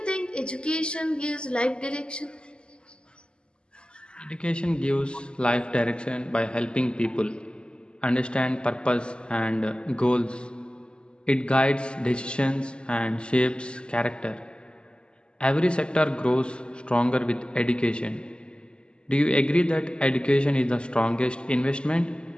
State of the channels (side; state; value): right; late; 0.050 ms